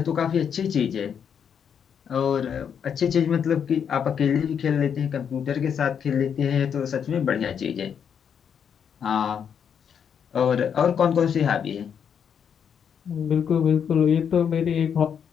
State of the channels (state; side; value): quieter; right; 7.7 dB